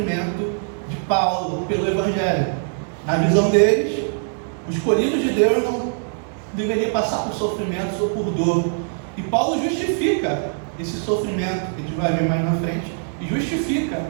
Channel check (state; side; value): silent; left; digital silence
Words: de Paulo pelo Evangelho. Na visão deles, o escolhido de Deus não deveria passar por sofrimentos ou por dor. E Paulo justifica esse sofrimento, que a gente vai ver mais na frente, e justifica